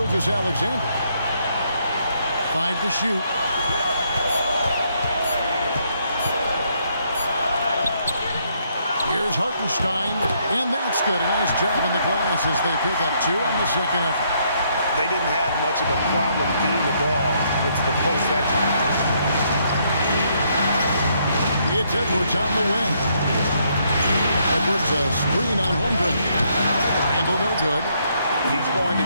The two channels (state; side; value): inverted; both; correlation -0.72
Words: 5 to shoot. Here's Hartenstein, and that's good. A nice job on the glass as they pick up 2 on the second effort. They didn't have much of a problem getting the ball into the post that time. It's Edwards on the wing. Edwards a screen on Holmgren. Randall no good. He's going to